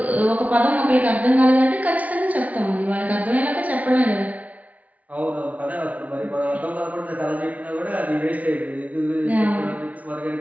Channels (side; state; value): left; late; 0.070 ms